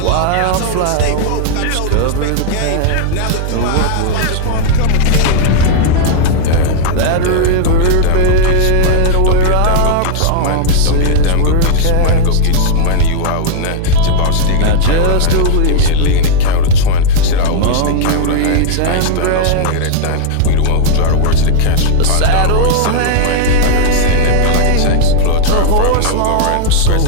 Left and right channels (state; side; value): different; both; correlation 0.00